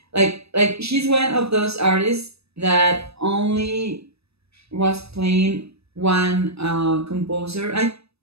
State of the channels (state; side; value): late; left; 0.78 ms